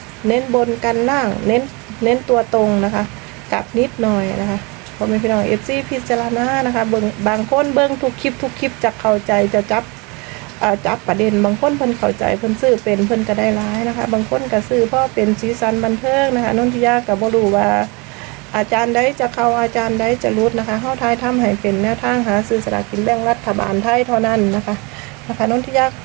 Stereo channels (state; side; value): quieter; left; 28.7 dB